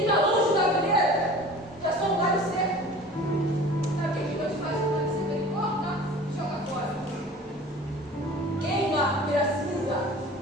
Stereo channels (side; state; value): both; normal; correlation 0.42